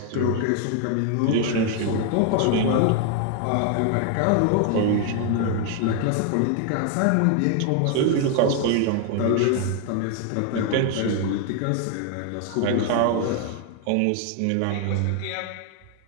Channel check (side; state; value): both; different; correlation 0.01